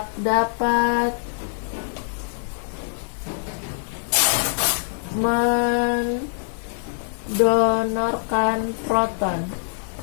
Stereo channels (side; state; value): right; silent; 63 dB below the other